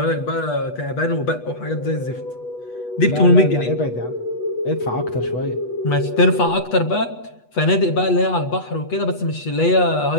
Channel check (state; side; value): late; right; 8.2 ms